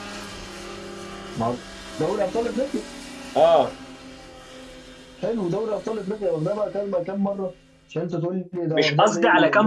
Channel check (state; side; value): identical; both; correlation 1.00